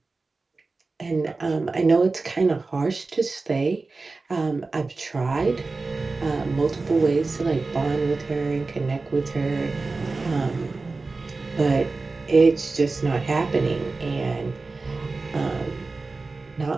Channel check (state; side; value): quieter; left; 3.7 dB